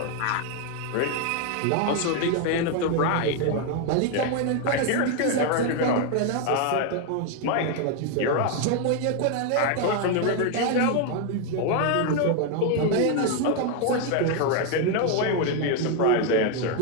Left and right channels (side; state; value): both; different; correlation 0.01